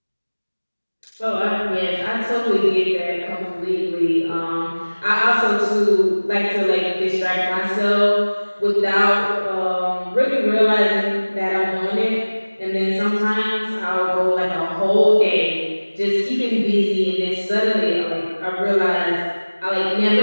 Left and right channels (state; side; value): inverted; both; correlation -1.00